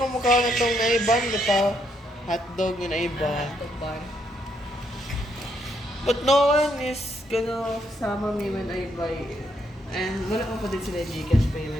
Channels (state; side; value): normal; both; correlation 0.75